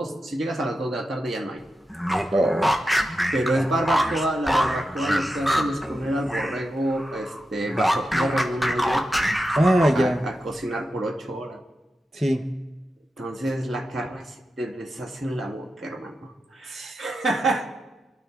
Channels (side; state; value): both; normal; correlation 0.89